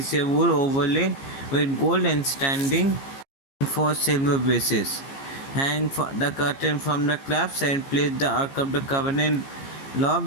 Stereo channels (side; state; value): right; late; 15 ms